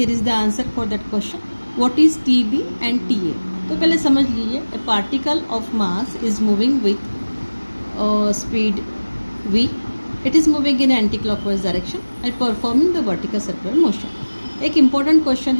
is the answer for that question. What is TB and TA? तो पहले समझ लीजिए, ए particle of mass is moving with speed v, it is moving in anti-clockwise direction and performing the vertical circular motion। एक important question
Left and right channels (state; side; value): inverted; both; correlation -1.00